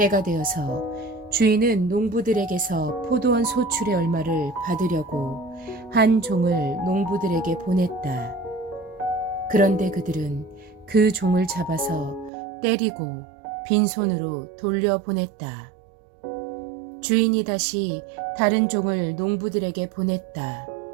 되어서 주인은 농부들에게서 포도원 소출의 얼마를 받으려고 한 종을 농부들에게 보냈다. 그런데 그들은 그 종을 잡아서 때리고 빈손으로 돌려보냈다. 주인이 다시 다른 종을 농부들에게 보냈다.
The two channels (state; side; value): drops out; left; at 12.3 s